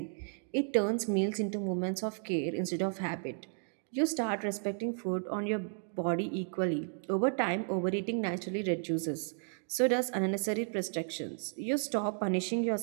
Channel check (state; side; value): silent; left; 55 dB below the other